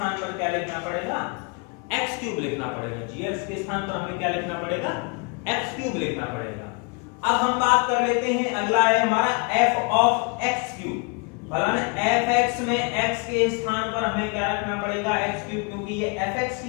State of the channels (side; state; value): right; quieter; 32.4 dB